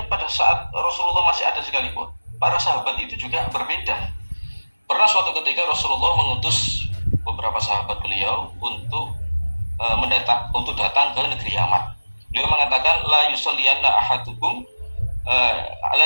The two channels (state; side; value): inverted; both; correlation -1.00